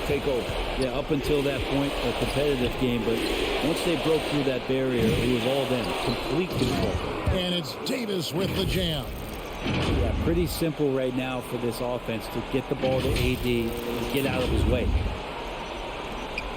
take over. Yeah, up until that point, a competitive game. But once they broke through that barrier, it was all them. Complete control. And it's Davis with the jam. Yeah, pretty simple right now for this offense to get the ball to AD and get out of his way.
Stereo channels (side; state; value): both; identical; correlation 1.00